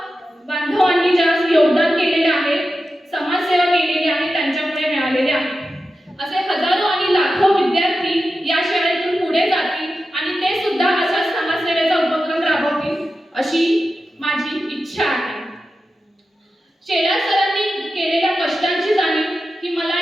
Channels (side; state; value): both; normal; correlation 0.91